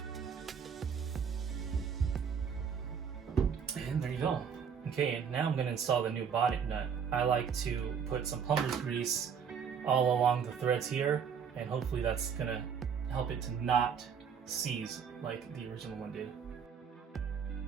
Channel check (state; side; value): quieter; left; 7.0 dB